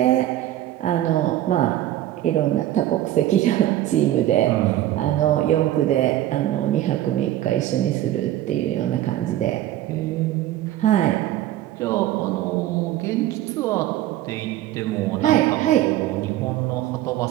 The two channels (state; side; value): quieter; left; 13.6 dB